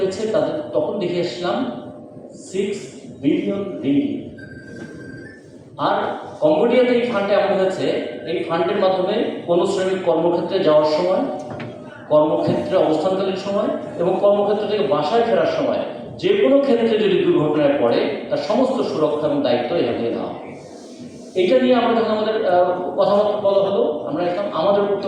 তাদের তখন দেখে আসলাম 6 বিলিয়ন রিঙ্গিট। আর কম্বোডিয়াতে এই ফান্ডে এমন হয়েছে, এই ফান্ডের মাধ্যমে কোনো শ্রমিক কর্মক্ষেত্রে যাওয়ার সময়, কর্মক্ষেত্রে অবস্থানকালীন সময় এবং কর্মক্ষেত্র থেকে বাসায় ফেরার সময় যে কোনো ক্ষেত্রে যদি দুর্ঘটনায় পড়ে তার সমস্ত সুরক্ষা এবং দায়িত্ব এখান থেকে নেওয়া। এইটা নিয়ে আমরা যখন আমাদের কথাবার্তা বলা হলো, আমরা একদম আমাদের উপর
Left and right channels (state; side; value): identical; both; correlation 1.00